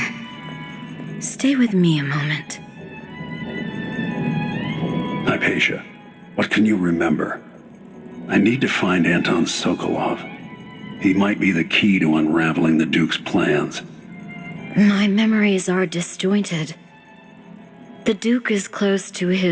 Stay with me a moment. Hypatia, what can you remember? I need to find Anton Sokolov. He might be the key to unraveling the Duke's plans. My memories are disjointed. The Duke is close to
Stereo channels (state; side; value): identical; both; correlation 1.00